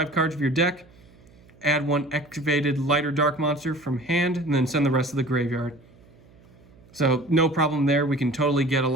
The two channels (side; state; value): right; noise; hum, 26 dB below the sound